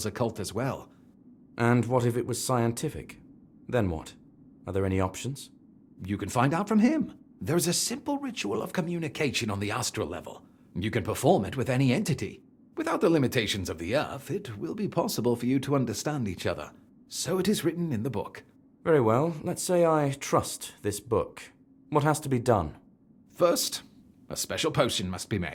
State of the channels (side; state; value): both; identical; correlation 1.00